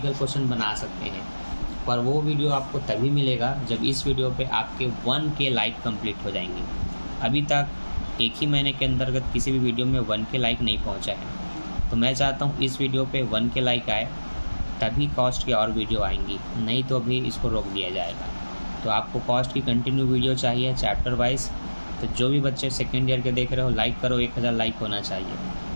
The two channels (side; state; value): both; inverted; correlation -1.00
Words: क्वेश्चन बना सकते हैं, पर वो वीडियो आपको तभी मिलेगा जब इस वीडियो पे आपके 1K लाइक कंप्लीट हो जाएंगे। अभी तक एक ही महीने के अंतर्गत किसी भी वीडियो में 1K लाइक नहीं पहुंचा है। तो मैं चाहता हूं इस वीडियो पे 1K लाइक आए, तभी कॉस्ट की और वीडियो आएंगी, नहीं तो अभी इसको रोक दिया जाएगा। तो आपको कॉस्ट की कंटिन्यू वीडियो चाहिए चैप्टर वाइज। तो जो भी बच्चे सेकेंड ईयर के देख रहे हो, लाइक करो, 1000 लाइक होना चाहिए।